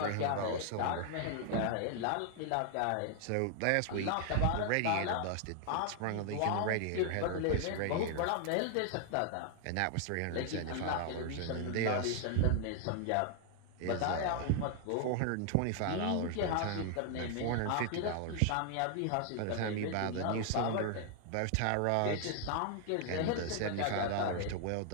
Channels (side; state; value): both; different; correlation 0.00